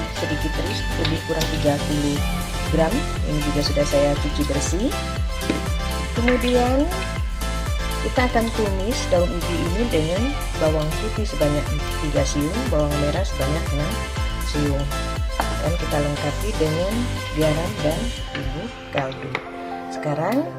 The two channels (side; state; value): both; identical; correlation 1.00